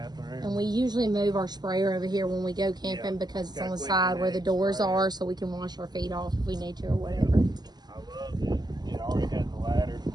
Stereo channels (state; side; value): late; left; 0.20 ms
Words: And we usually move our sprayer over here when we go camping Yeah. because it's Got on the quick side where the connect doors sprayer. are, so we can wash our feet off if we need to or whatever. I love it.